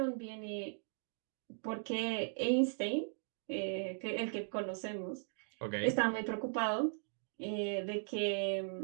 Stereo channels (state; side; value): silent; left; digital silence